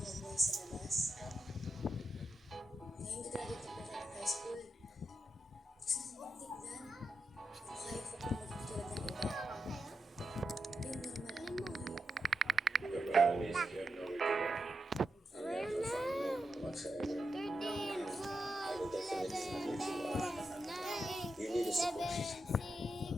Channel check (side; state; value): both; normal; correlation 0.86